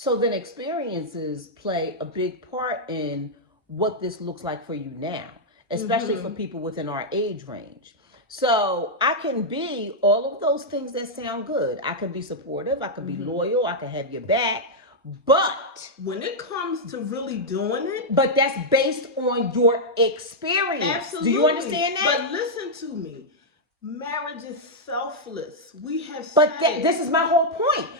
then experiences play a big part in what this looks like for you now, especially for people within our age range. So I can be all of those things that sound good. I can be supportive. I can be loyal. I can have your back. But when it comes to really doing it, but that's based on your experience. Absolutely. Do you understand that? But listen to me. Marriage is selfless. We have But this is my whole point.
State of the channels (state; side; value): normal; both; correlation -0.05